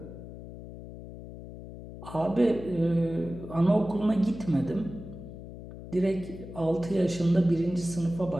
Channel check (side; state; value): left; noise; hum, 13 dB below the sound